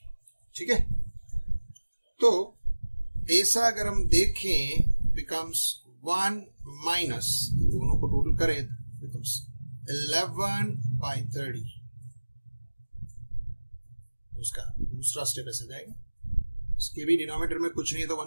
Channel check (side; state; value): both; inverted; correlation -1.00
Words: ठीक है, तो ऐसा अगर हम देखें बिकम्स 1 माइनस, दोनों को टोटल करें बिकम्स 11/30. उसका दूसरा स्टेप ऐसे जाएगा. उसके भी डिनोमिनेटर में कुछ नहीं है तो